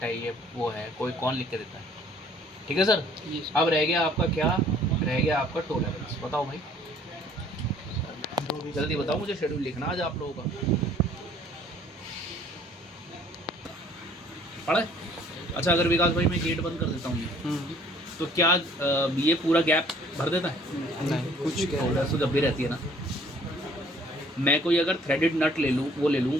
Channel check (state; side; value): normal; both; correlation 0.57